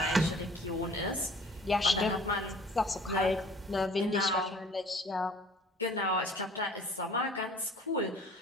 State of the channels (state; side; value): normal; both; correlation 0.49